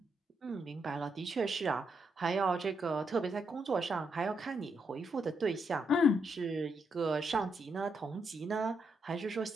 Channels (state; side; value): normal; both; correlation 0.79